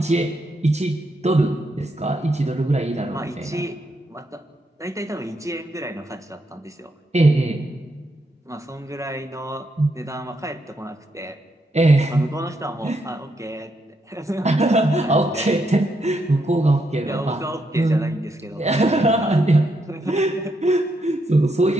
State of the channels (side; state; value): both; normal; correlation 0.79